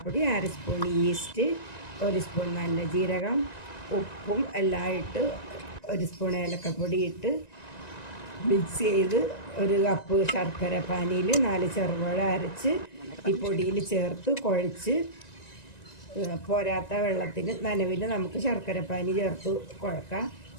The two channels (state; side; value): late; right; 1.9 ms